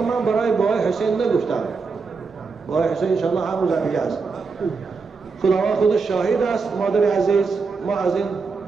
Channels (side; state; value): left; quieter; 4.7 dB